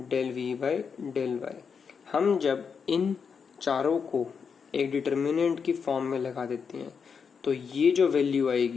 v by del y. हम जब इन चारों को एक डिटर्मिनेंट की फॉर्म में लगा देते हैं तो ये जो वैल्यू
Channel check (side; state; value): right; quieter; 6.1 dB